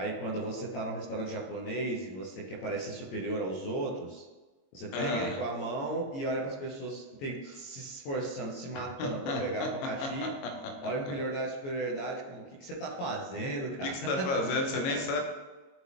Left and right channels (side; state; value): right; late; 22 ms